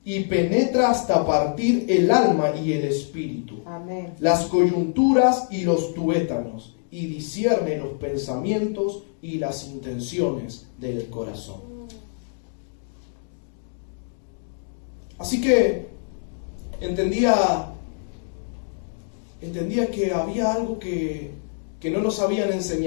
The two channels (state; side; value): silent; right; digital silence